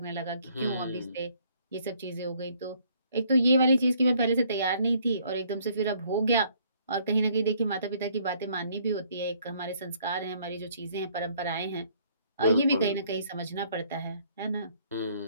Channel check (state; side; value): inverted; both; correlation -0.63